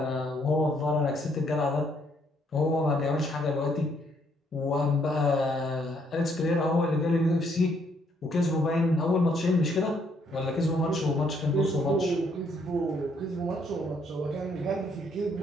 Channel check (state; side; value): normal; both; correlation 0.70